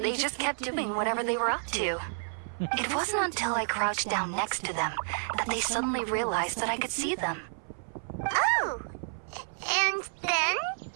just kept doing whatever they were up to. It wasn't until I crouched down next to them that they suddenly realized that I could see them. Oh! And then?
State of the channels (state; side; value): silent; left; 58 dB below the other